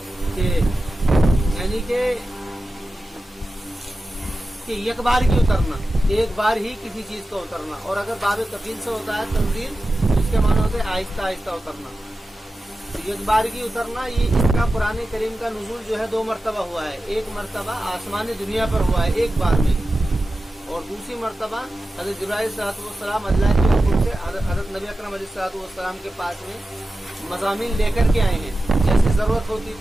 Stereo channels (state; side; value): normal; both; correlation 0.93